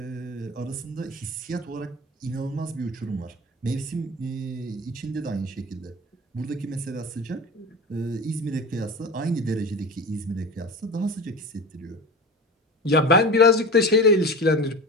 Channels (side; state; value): both; normal; correlation 0.31